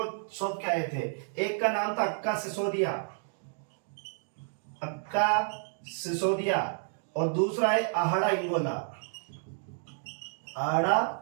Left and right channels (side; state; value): left; silent; digital silence